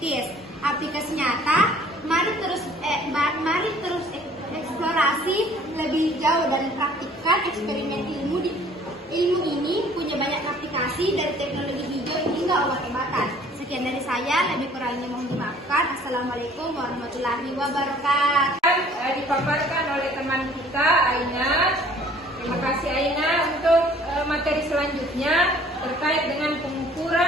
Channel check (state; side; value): normal; both; correlation 0.54